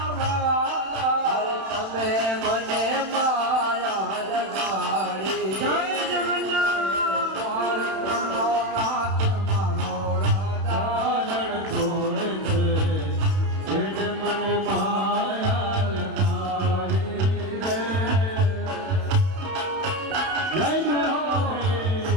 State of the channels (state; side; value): late; left; 31 ms